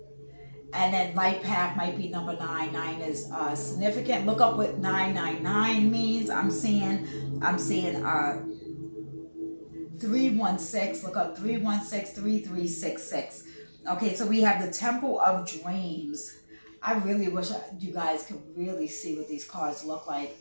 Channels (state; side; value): inverted; both; correlation -1.00